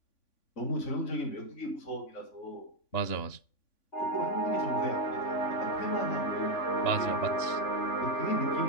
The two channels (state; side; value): late; right; 3.5 ms